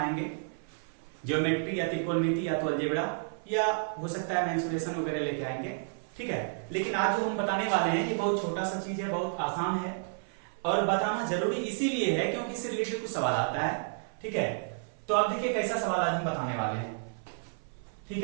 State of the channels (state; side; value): silent; left; 56 dB below the other